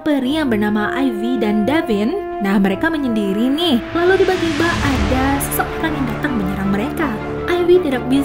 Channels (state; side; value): identical; both; correlation 1.00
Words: peri yang bernama Ivy dan Davin. Nah, mereka menyendiri nih. Lalu tiba-tiba ada seseorang yang datang menyerang mereka. Ivy tidak